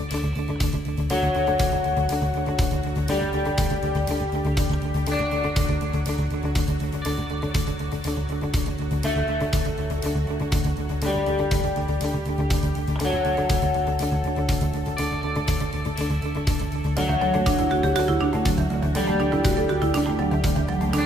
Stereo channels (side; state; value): both; normal; correlation 0.75